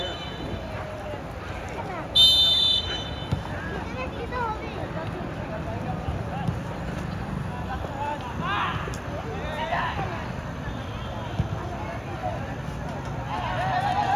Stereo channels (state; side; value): identical; both; correlation 1.00